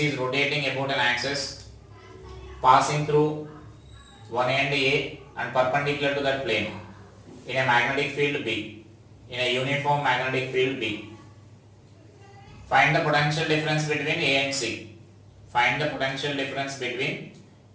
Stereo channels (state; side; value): identical; both; correlation 1.00